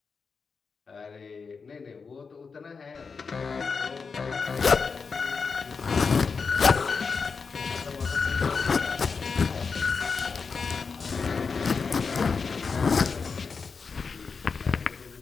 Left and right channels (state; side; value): quieter; right; 5.1 dB